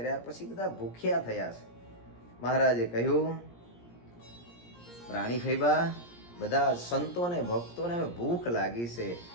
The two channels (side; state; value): right; late; 17 ms